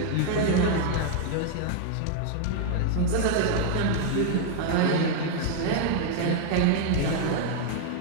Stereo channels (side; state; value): both; different; correlation -0.01